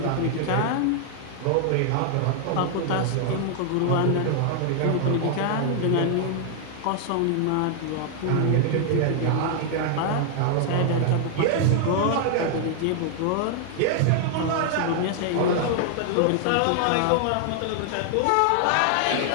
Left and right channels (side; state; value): both; different; correlation 0.00